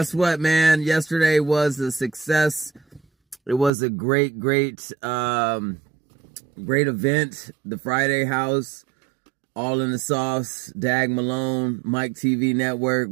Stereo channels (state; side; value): drops out; left; at 3.7 s